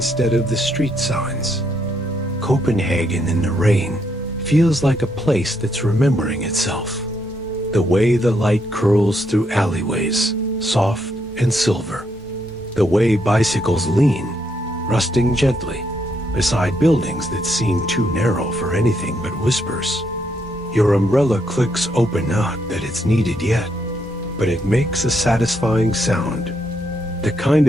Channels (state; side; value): normal; both; correlation 0.76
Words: of the street signs. Copenhagen in the rain feels like a place that's remembering itself. The way the light curls through alleyways, soft and silver. The way bicycles lean, rusting gently, beside buildings that seem too narrow for anything but whispers. Your umbrella clicks open, not that it's needed yet, but it makes a satisfying sound. The kind